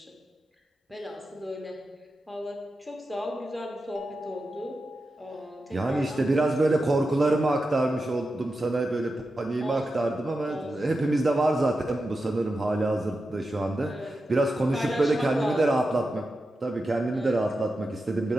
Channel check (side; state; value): both; normal; correlation 0.90